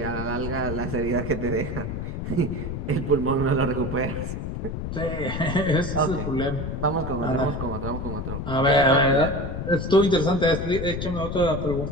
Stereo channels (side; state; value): left; noise; rumble, 5 dB below the sound